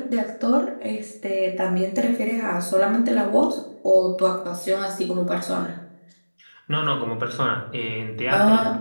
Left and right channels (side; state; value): both; inverted; correlation -1.00